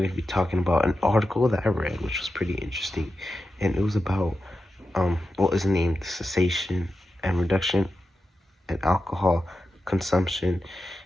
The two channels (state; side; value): normal; both; correlation 0.90